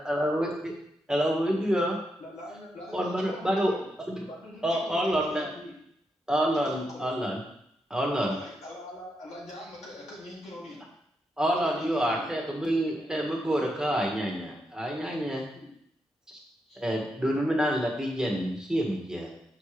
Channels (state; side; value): normal; both; correlation 0.83